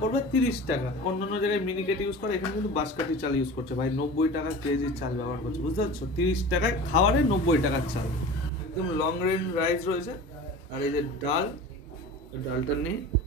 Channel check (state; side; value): normal; both; correlation 0.36